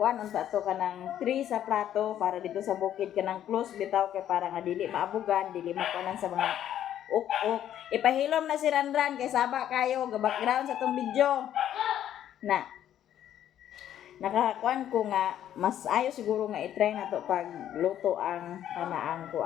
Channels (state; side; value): quieter; right; 11.0 dB